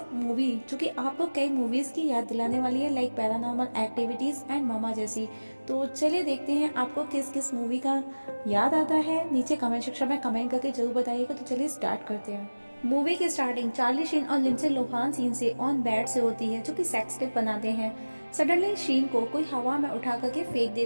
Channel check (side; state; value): both; inverted; correlation -1.00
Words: मूवी जो कि आपको कई मूवीज की याद दिलाने वाली है, लाइक पैरानॉर्मल एक्टिविटीज एंड मामा जैसी। तो चलिए देखते हैं आपको किस किस मूवी का याद आता है। नीचे कमेंट सेक्शन में कमेंट करके जरूर बताइएगा। तो चलिए स्टार्ट करते हैं। मूवी की स्टार्टिंग चार्ली शीन और लिंडसे लोहान सीन से ऑन बेड से होती है, जो कि सेक्स टेप बनाते हैं। सडनली शीन को कोई हवा में उठा करके फेंक